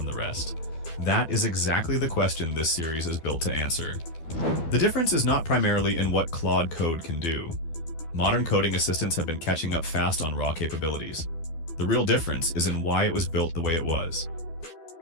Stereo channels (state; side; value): late; right; 12 ms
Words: the rest? That is exactly the question this series is built to answer. The difference is not primarily in what Claude Code can do. Modern coding assistants have been catching up fast on raw capabilities. The real difference is in why it was built the way it was.